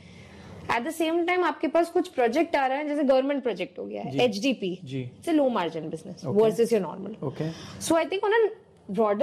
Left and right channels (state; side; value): identical; both; correlation 1.00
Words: एट द सेम टाइम आपके पास कुछ प्रोजेक्ट आ रहा है, जैसे गवर्नमेंट प्रोजेक्ट हो गया है HDP, it's a low margin business versus your normal. So I think on a